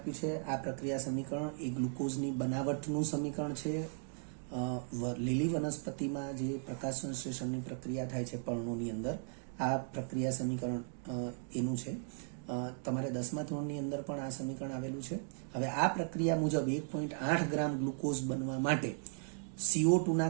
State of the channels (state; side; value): silent; left; 53 dB below the other